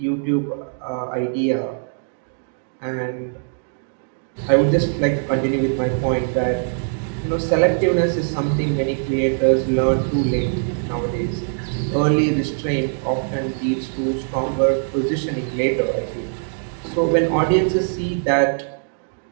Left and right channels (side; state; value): left; silent; digital silence